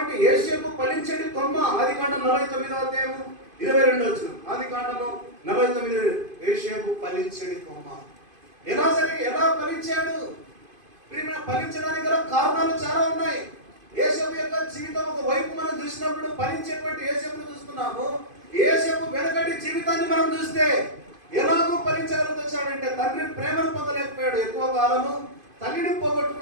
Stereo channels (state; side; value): late; left; 2.5 ms